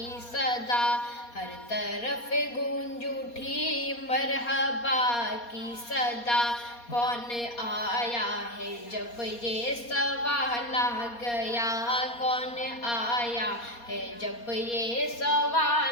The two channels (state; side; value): late; right; 4.2 ms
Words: صدا، ہر طرف گونج اٹھی مرحبا کی صدا، کون آیا ہے جب یہ سوال آ گیا، کون آیا ہے جب یہ